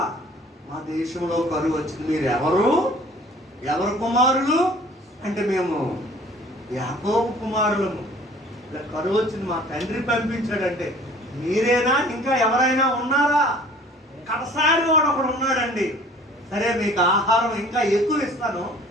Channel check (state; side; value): normal; both; correlation 0.50